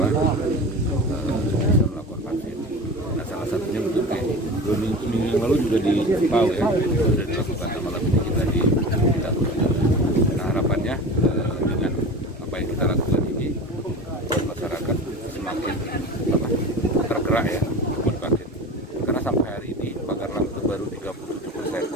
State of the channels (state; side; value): normal; both; correlation 0.33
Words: bisa melakukan vaksin. Nah, salah satunya bentuk kayak minggu yang lalu juga di Pau ya, sudah dilakukan. Malam ini kita di kita. Nah, harapannya dengan apa yang kita lakukan ini, masyarakat semakin tergerak ya untuk vaksin. Karena sampai hari ini Pagarlang itu baru